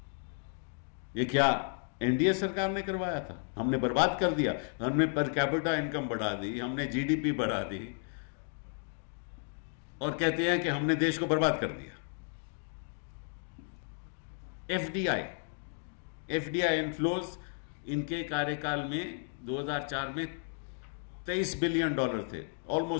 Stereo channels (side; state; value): right; silent; 56 dB below the other